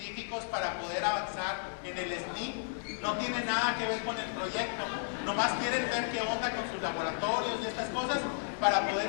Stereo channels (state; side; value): silent; right; digital silence